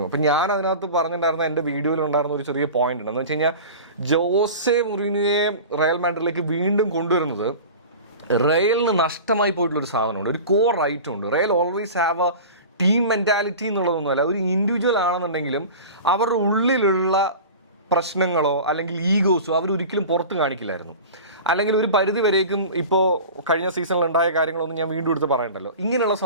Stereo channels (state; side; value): inverted; both; correlation -0.35